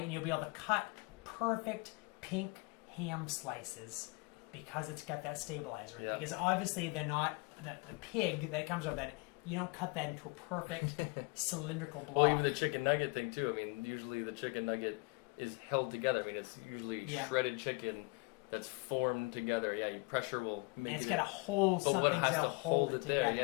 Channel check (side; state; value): right; quieter; 28.3 dB